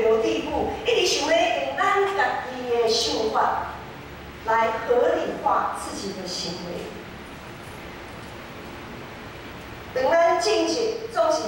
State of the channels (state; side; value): identical; both; correlation 1.00